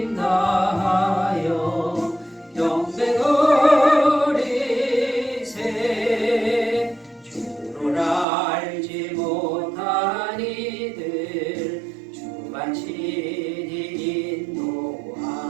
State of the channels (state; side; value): drops out; left; at 8.2 s